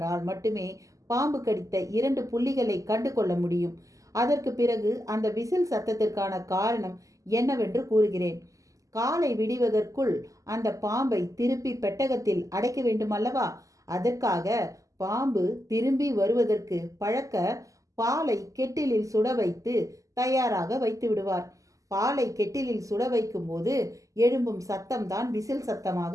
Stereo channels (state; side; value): late; left; 0.16 ms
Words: மட்டுமே பாம்பு கடித்த 2 புள்ளிகளை கண்டு கொள்ள முடியும். அதற்கு பிறகு அந்த விசில் சத்தத்திற்கான காரணம் என்னவென்று கூறுகிறேன். காலை விடிவதற்குள் அந்த பாம்பை திருப்பி பெட்டகத்தில் அடைக்க வேண்டுமல்லவா? அதற்காக பாம்பு திரும்பி வருவதற்கு பழக்க பாலை கெட்டிலில் சுட வைத்து தயாராக வைத்து விடுவார். பாலை கெட்டிலில் சுட வைக்கும் போது எழும்பும் சத்தம்தான் விசில்